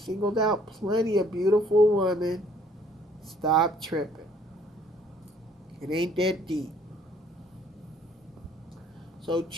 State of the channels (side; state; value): both; normal; correlation 0.60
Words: out plenty of beautiful women. Stop tripping. It ain't that deep. So